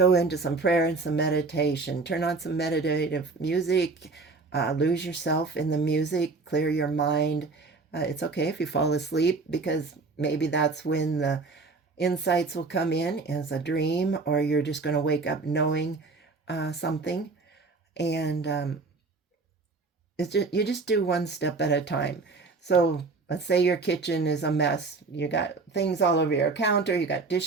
into some prayer and some meditation. Turn on some meditative music. Lose yourself in the music. Clear your mind. It's okay if you fall asleep, because maybe that's when the insights will come in as a dream, or you're just going to wake up knowing something. And you just do one step at a time. So let's say your kitchen is a mess. You got things all over your counter. You got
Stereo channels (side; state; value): left; quieter; 3.9 dB